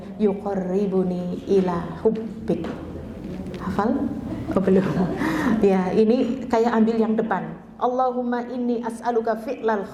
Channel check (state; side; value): identical; both; correlation 1.00